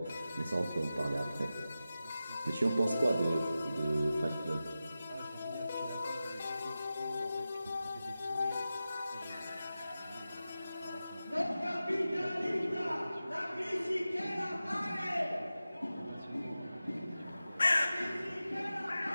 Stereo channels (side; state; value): both; inverted; correlation -0.93